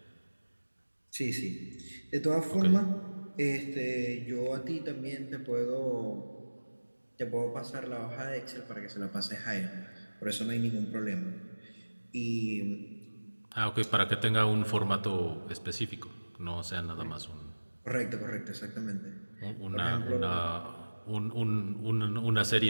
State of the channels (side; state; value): both; inverted; correlation -1.00